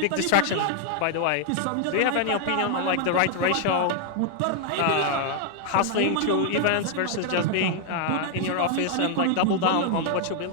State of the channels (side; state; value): both; different; correlation 0.00